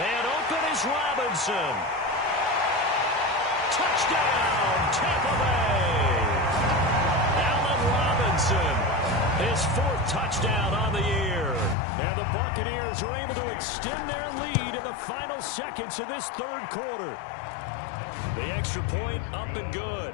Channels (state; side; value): drops out; right; at 11.8 s